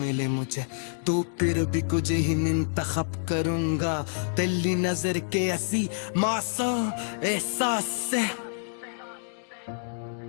मुझे तो फिर भी कुछ ही इंतखाब करूंगा। तेरी नजर के ऐसी मासूम एहसास से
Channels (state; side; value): silent; right; digital silence